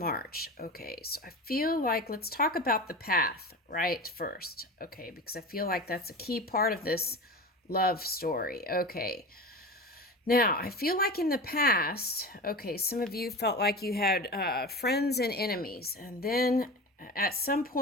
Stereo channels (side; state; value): both; normal; correlation 0.29